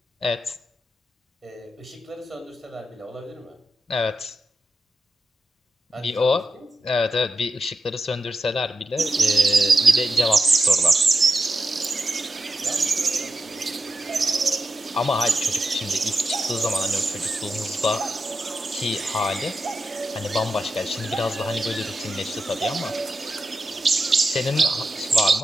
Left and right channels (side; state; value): both; normal; correlation 0.89